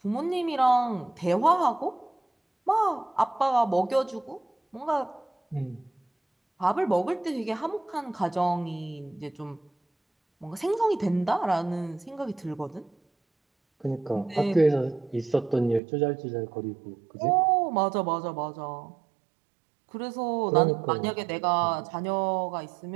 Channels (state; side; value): drops out; left; at 15.8 s